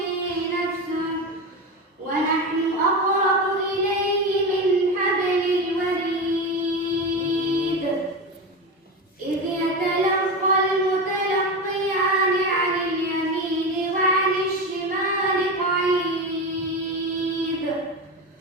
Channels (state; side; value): normal; both; correlation 0.20